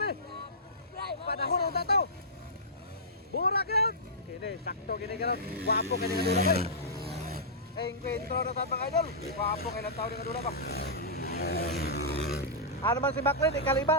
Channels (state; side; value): normal; both; correlation -0.15